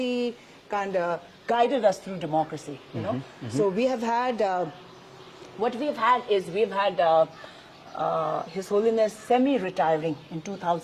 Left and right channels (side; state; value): both; identical; correlation 1.00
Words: kind of guided us through democracy, So we have had, we've had His Holiness semi-retiring in